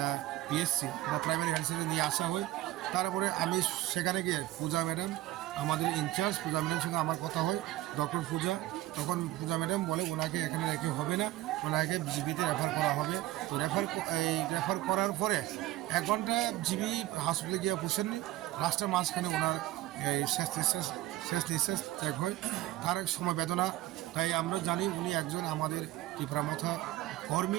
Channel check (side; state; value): left; quieter; 16.1 dB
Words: বা প্রাইমারি হেলথ সেন্টারে নিয়ে আসা হয়। তারপরে আমি সেখানে গিয়ে পূজা ম্যাডাম আমাদের ইনচার্জ পূজা ম্যাডামের সঙ্গে আমার কথা হয়, ডক্টর পূজা। তখন পূজা ম্যাডাম বলে ওনাকে এখানে রেখে হবে না, ওনাকে জিবিতে রেফার করা হবে। তো রেফার করার পরে 1 ঘন্টা জিবি হসপিটালে গিয়ে বসেননি, রাস্তার মাঝখানে ওনার শেষ নিঃশ্বাস ত্যাগ হয়। তার সময় বেদনা। তাই আমরা জানি উনি একজন আমাদের ত্রিপুরামথা